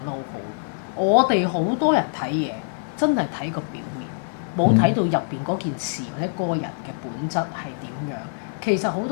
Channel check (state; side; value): silent; right; 63 dB below the other